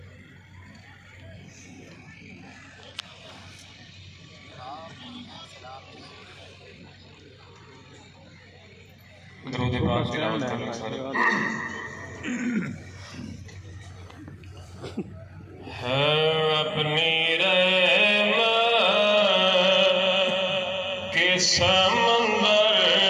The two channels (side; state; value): both; identical; correlation 1.00